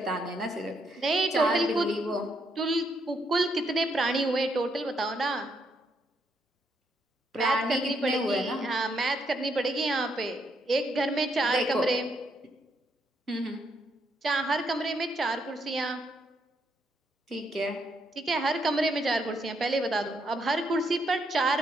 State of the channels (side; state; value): both; normal; correlation 0.75